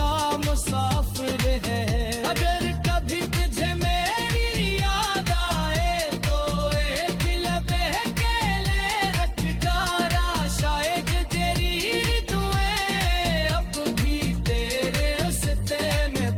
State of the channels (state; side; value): identical; both; correlation 1.00